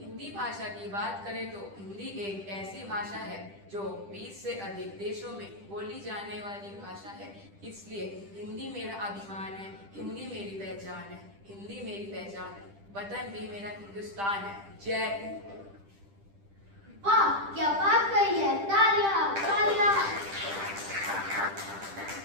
हिंदी भाषा की बात करें तो हिंदी एक ऐसी भाषा है जो 20 से अधिक देशों में बोली जाने वाली भाषा है। इसलिए हिंदी मेरा अभिमान है, हिंदी मेरी पहचान है, हिंदी मेरी पहचान है, वतन भी मेरा हिंदुस्तान है। जय हिंद। वाह, क्या बात कही है, तालियां तालियां।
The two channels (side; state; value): left; late; 10 ms